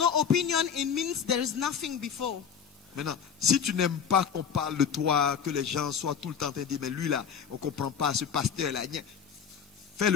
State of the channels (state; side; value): quieter; right; 7.4 dB